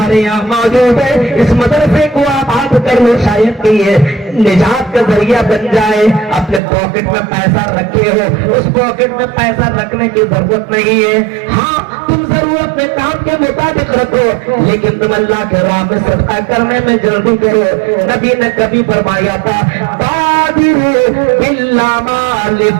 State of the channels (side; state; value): left; drops out; at 6.6 s